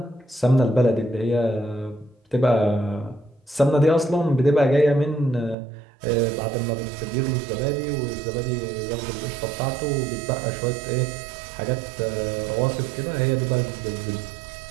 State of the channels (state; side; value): drops out; left; at 5.6 s